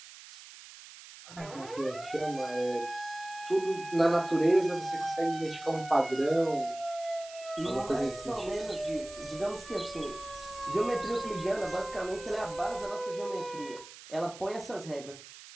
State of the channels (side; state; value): right; noise; hiss, 16 dB below the sound